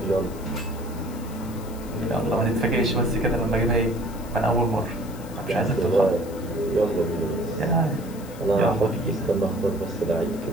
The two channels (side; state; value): left; noise; hiss, 20 dB below the sound